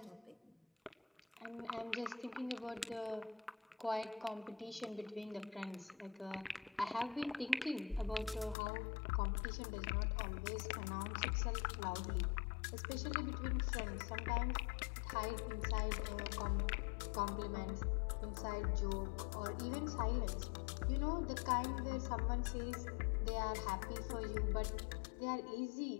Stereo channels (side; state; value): right; drops out; at 8.6 s